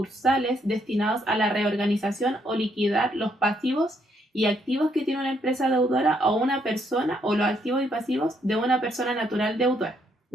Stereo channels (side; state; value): both; normal; correlation 0.73